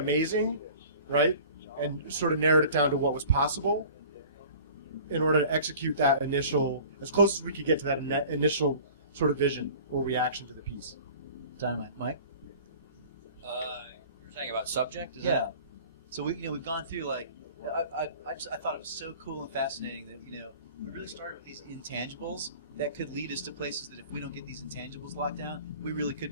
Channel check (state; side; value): inverted; both; correlation -0.45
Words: right, and sort of narrowed it down to what was possible in order to execute that initial, as close as we could get to that initial sort of vision or reaction to the piece. Dynamite. Mike? You're saying about subject? Is Yeah. that- So we've gone through, like, I thought it was so cool and fascinating that, you know, we really started with these intangibles that could lead us to places that if we don't get these intangibles locked down, we really could